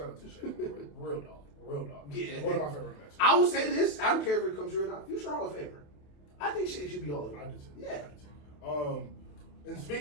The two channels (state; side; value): late; right; 27 ms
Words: to Shane McCoy, real dog. Yeah, one of my favorite matches. I will say this: I don't care if it comes true or not. Future Hall of Famer. I think Shane should be all of them. I do too. Yeah. I do too. And